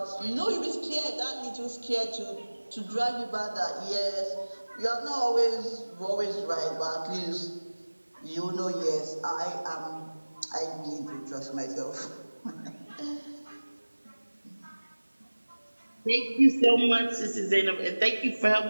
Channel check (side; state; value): both; inverted; correlation -1.00